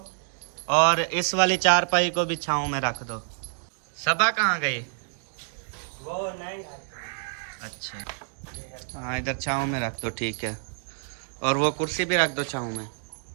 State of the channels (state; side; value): silent; left; digital silence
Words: और इस वाली चारपाई को भी छाँव में रख दो। सबा कहाँ गई? वो नहीं। अच्छा, हाँ इधर छाँव में रख दो, ठीक है। और वो कुर्सी भी रख दो छाँव में,